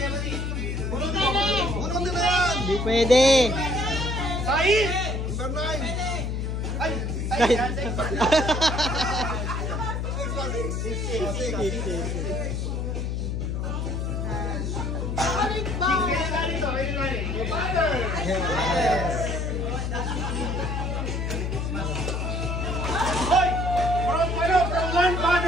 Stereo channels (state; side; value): noise; left; hum, 1 dB below the sound